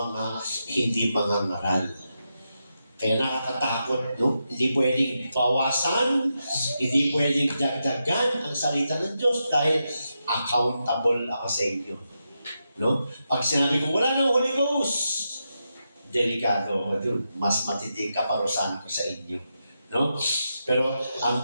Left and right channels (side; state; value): both; inverted; correlation -0.86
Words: hindi mangangaral. Kaya nakakatakot, no? Hindi pwedeng bawasan, hindi pwedeng dagdagan ang salita ng Diyos dahil accountable ako sa inyo. No? Pag sinabi ko, wala nang Holy Ghost, delikado ako dun. Mas matinding kaparusahan ko sa inyo. No? Pero ang